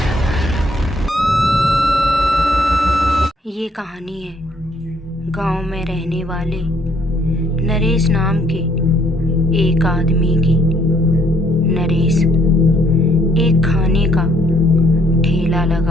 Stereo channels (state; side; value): normal; both; correlation 0.66